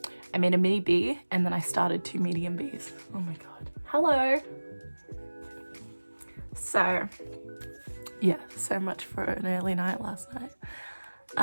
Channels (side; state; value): both; inverted; correlation -1.00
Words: mini bee, and then I started 2 medium bees. Oh my god. Hello. So yeah, so much for an early night last night.